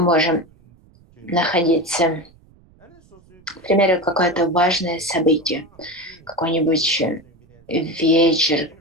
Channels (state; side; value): noise; right; rumble, 29 dB below the sound